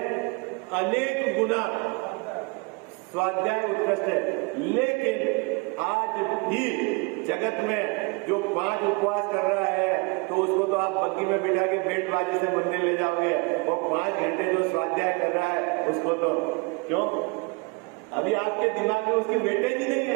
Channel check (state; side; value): quieter; left; 30.2 dB